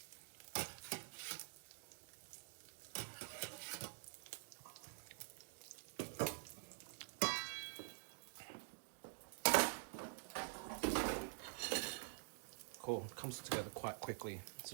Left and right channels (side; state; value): left; silent; digital silence